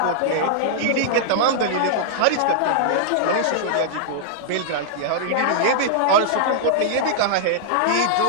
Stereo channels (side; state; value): both; different; correlation -0.01